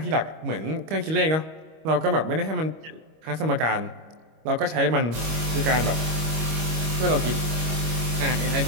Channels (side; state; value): left; late; 25 ms